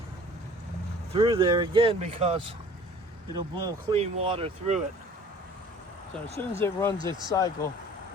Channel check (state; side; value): normal; both; correlation 0.49